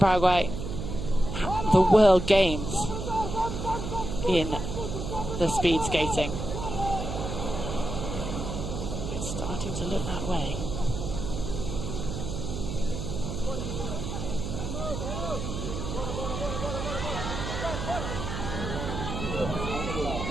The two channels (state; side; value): noise; right; hum, 5 dB below the sound